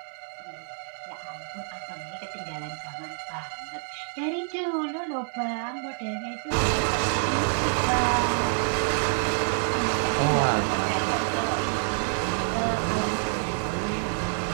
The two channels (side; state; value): left; silent; 60 dB below the other